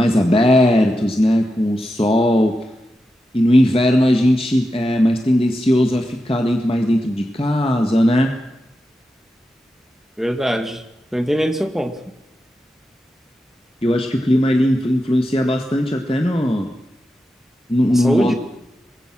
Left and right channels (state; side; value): normal; both; correlation 0.89